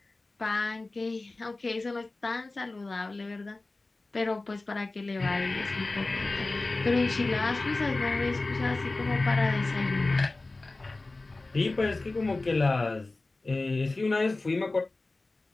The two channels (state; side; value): quieter; right; 3.2 dB